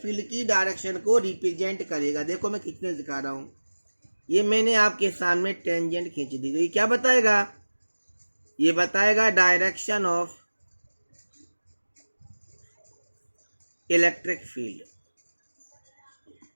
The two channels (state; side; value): inverted; both; correlation -1.00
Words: फील्ड की डायरेक्शन को रिप्रेजेंट करेगा। देखो मैं खींचने दिखा रहा हूं, ये मैंने आपके सामने टेंजेंट खींच दी गई। क्या बताएगा, ये बताएगा डायरेक्शन ऑफ इलेक्ट्रिक फील्ड।